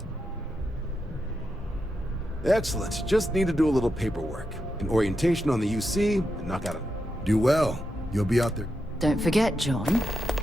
Excellent. Just need to do a little paperwork. An orientation on the UC, and knock out a... Do well. You'll be out there. Don't forget, John.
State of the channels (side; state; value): both; normal; correlation 0.86